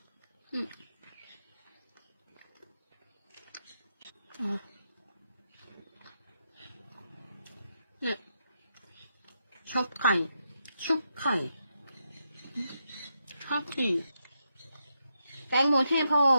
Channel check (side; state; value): both; inverted; correlation -0.84